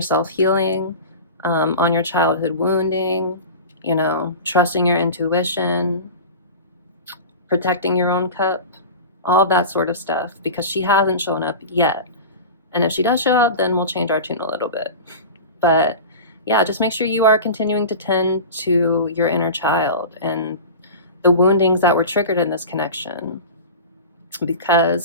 self-healing, on your childhood wounding, trusting your intuition, protecting your own cup, all of that sort of stuff, because she hasn't shown up yet. And if she does show up, then we'll change our tune a little bit. But yeah, just make sure you are continuing to tend to your inner child and the woundings that were triggered in this connection.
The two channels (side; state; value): both; inverted; correlation -0.31